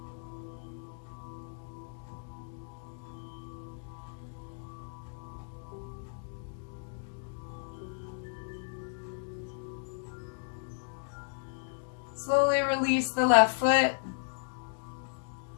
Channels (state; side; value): silent; right; digital silence